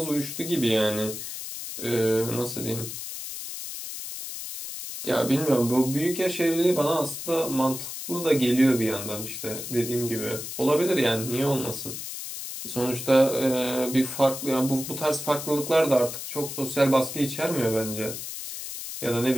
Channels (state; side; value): noise; left; hiss, 8 dB below the sound